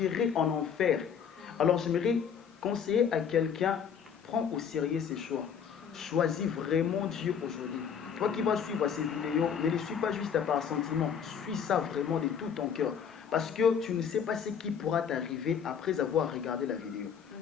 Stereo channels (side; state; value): right; quieter; 7.5 dB